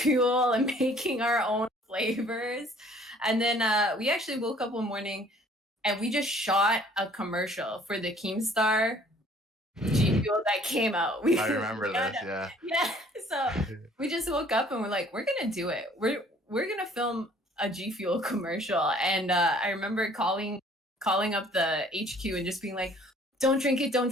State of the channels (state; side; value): normal; both; correlation 0.56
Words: and making our own flavors. And then we actually woke up one morning and we just shot a commercial for the Keemstar G Fuel that came out. I We remember got this. Yeah. yeah. So we just woke up and we're like, we're gonna do it. We're gonna film a G Fuel commercial. And I remember calling up the HQ and just being like, don't drink it, don't